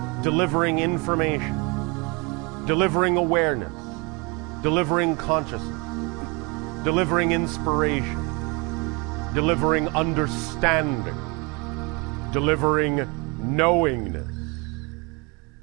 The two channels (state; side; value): quieter; left; 29.5 dB